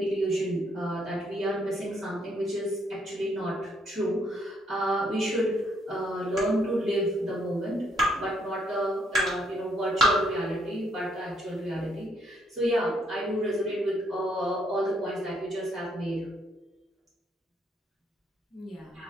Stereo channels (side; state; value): both; normal; correlation 0.71